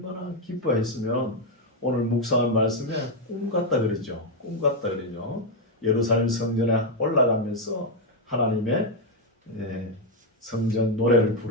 기뻐했으면 오늘 묵상한 말씀에 꿈 같다 그러죠. 꿈 같다 그러죠. 예루살렘 성전에 올라가면서 하나님의 성전 노래를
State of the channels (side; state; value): both; normal; correlation 0.03